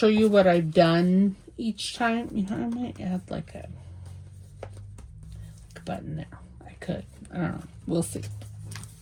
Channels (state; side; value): identical; both; correlation 1.00